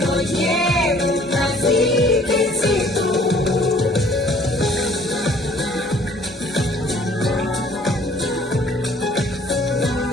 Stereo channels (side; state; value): both; normal; correlation 0.56